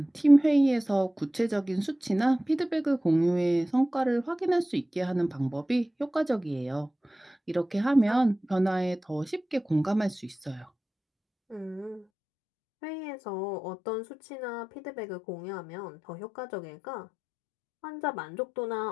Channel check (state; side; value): drops out; right; at 12.1 s